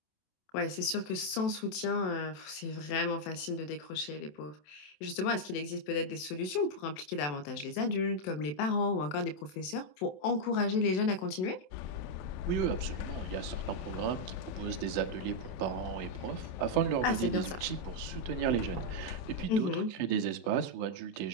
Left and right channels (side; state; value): right; late; 27 ms